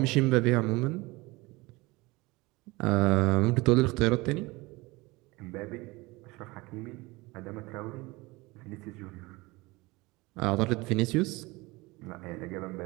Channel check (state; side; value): quieter; left; 22.8 dB